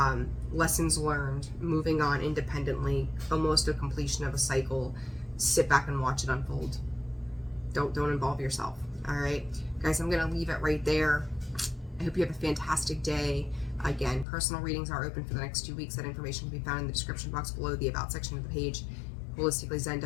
Lessons learned, moving on independently, almost a completion of a cycle. Sit back and watch it unfold. Don't involve yourself. All right, guys, I'm going to leave it right there. I hope you have a fantastic day. Again, personal readings are open for the next 2 weeks. That information can be found in the description box below, the About section of the page,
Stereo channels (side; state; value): right; drops out; at 14.2 s